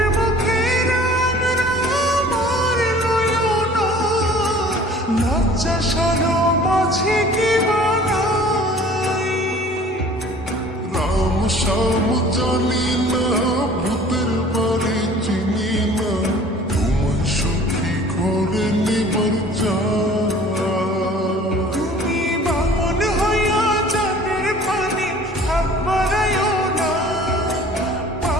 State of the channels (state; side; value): normal; both; correlation 0.48